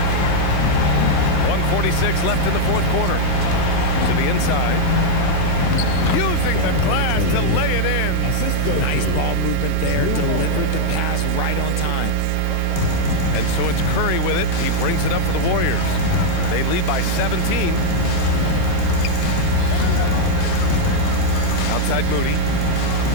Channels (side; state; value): both; different; correlation -0.01